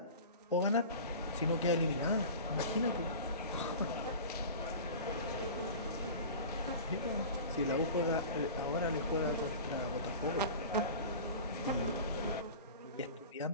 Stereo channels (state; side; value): inverted; both; correlation -0.36